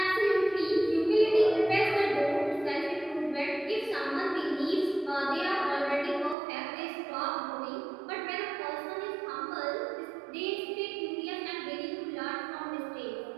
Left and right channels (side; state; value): left; drops out; at 6.4 s